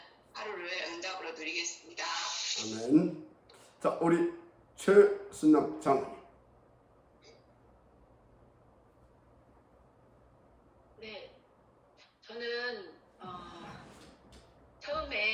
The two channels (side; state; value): both; identical; correlation 1.00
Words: 하루를 응답으로 누리겠습니다. 아멘. 자, 우리 최순남 장로님. 네, 저는